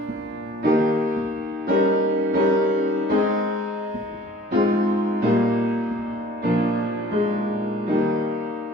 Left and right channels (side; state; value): both; normal; correlation 0.51